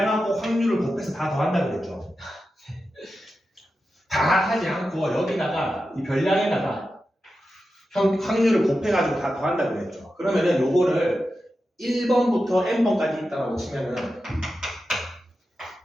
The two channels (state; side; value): normal; both; correlation 0.91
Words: 확률을 곱해서 다 더한다 그랬죠? 다 하지 않고 여기다가 이 별량에다가 확률을 곱해가지고 다 더한다 그랬죠? 그러면은 요거를 1번부터 n번까지 있다라고 치면은